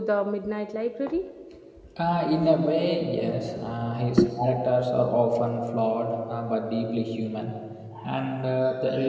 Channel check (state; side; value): identical; both; correlation 1.00